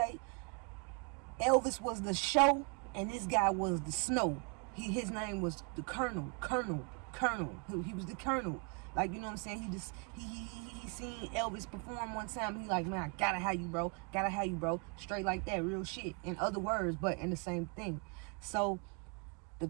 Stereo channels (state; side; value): quieter; left; 35.5 dB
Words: Elvis was the show and this guy was the snow. His name was the Colonel. He was the Colonel. Like, you know what I'm saying? He seen Elvis perform one time. He like, man, I gotta have you, bro. Straight like that, real shit. In other words, but in the same thing. So the